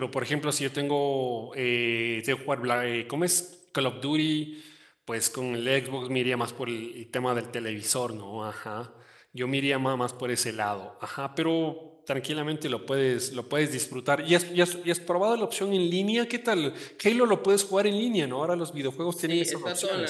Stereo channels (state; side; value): identical; both; correlation 1.00